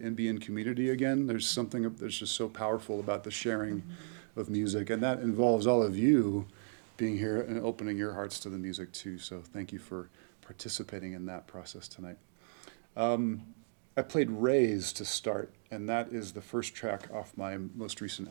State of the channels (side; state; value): left; silent; digital silence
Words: be in community again. There's something that's just so powerful about the sharing of music, and that involves all of you being here and opening your hearts to the music too. So thank you for participating in that process tonight. I played Raise to start, and that is the first track off my most recent